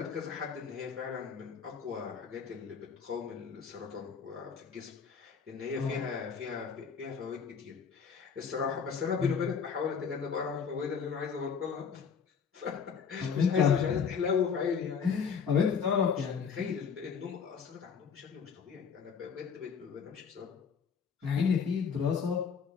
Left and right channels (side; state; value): right; quieter; 6.3 dB